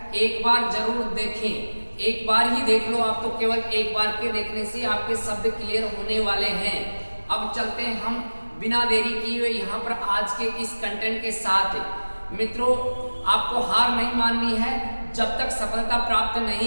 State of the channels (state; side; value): inverted; both; correlation -1.00